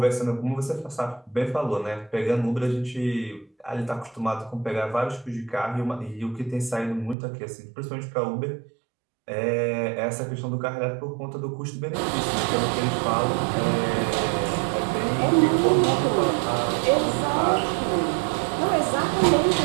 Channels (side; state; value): left; drops out; at 7.2 s